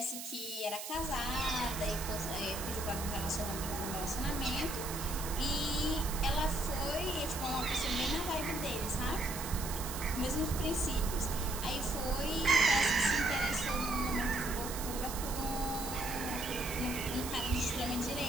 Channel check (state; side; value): noise; right; hiss, 7 dB below the sound